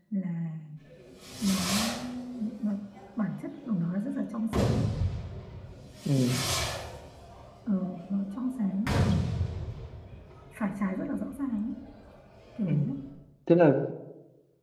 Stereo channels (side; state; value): both; identical; correlation 1.00